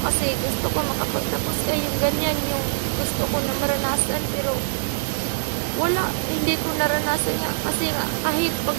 kasi gusto ko makapagtapos ka, yung ganyan, yung gusto ko na maranasan, pero wala, hindi ko naranasan nga, kasi nga, kahit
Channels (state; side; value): silent; left; digital silence